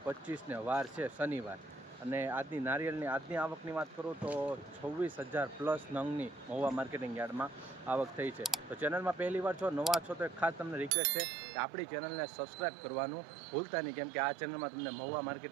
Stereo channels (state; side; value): drops out; left; at 10.9 s